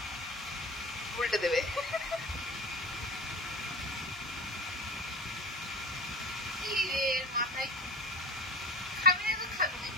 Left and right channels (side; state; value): both; normal; correlation 0.35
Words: উল্টে দেবে। মাথায় খাবি না তো থাকবে,